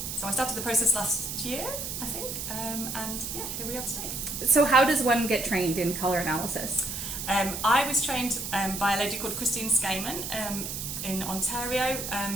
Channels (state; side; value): noise; right; hiss, 5 dB below the sound